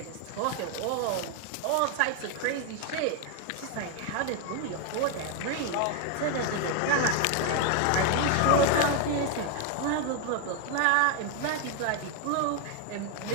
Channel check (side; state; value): both; different; correlation 0.01